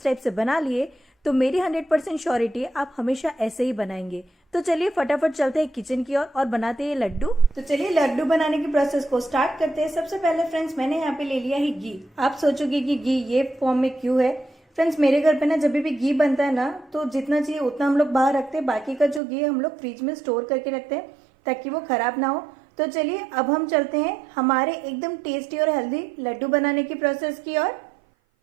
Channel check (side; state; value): left; drops out; at 19.2 s